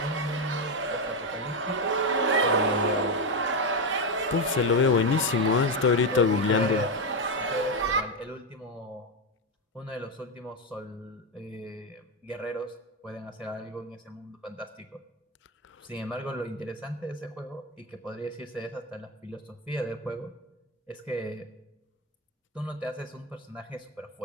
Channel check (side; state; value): both; normal; correlation 0.08